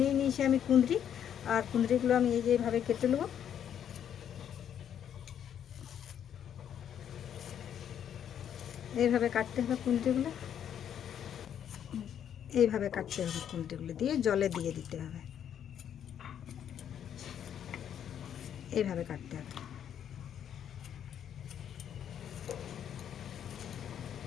নিয়েছি আমি কুঁদরি, আর কুঁদরিগুলো আমি এই যে এইভাবে কেটে নেব। এইভাবে কাটতে হবে কুঁদরিগুলো, এইভাবে কাটতে হবে কুঁদরিগুলো, দিয়ে জলে দিয়ে দিতে হবে, এইভাবে কাটতে হবে।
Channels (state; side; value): quieter; right; 9.3 dB